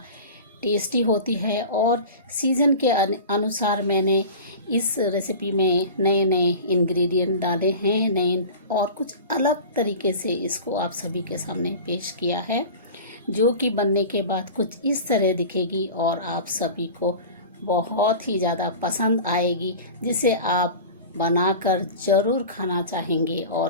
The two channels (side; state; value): both; inverted; correlation -0.35